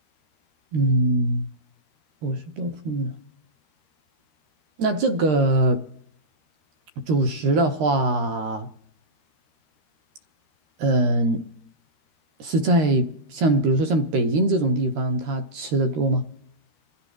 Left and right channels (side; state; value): left; late; 13 ms